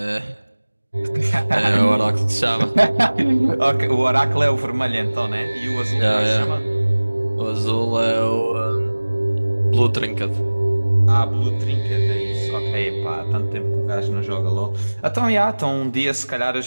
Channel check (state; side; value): inverted; both; correlation -1.00